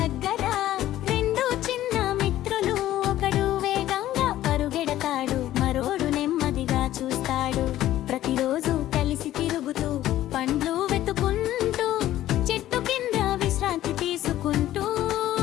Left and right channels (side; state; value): right; quieter; 13.7 dB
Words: దగ్గర రెండు చిన్న మిత్రులు, ఒకడు వేగంగా పరుగెడతాడు, మరోడు నెమ్మదిగా చూస్తాడు. ప్రతిరోజు కలిసి తిరుగుతూ పండ్లు వెతుకుంటూ చెట్టు కింద విశ్రాంతి తీసుకుంటూ